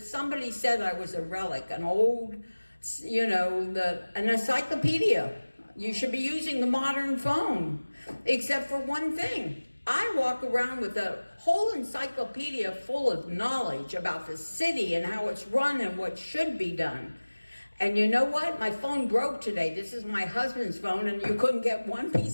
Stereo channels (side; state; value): both; inverted; correlation -1.00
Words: somebody said I was a relic, an old, an encyclopedia. You should be using the modern phone, except for one thing. I walk around with a whole encyclopedia full of knowledge about the city and how it's run and what should be done. And you know what? My phone broke today. This is my husband's phone, and you couldn't get one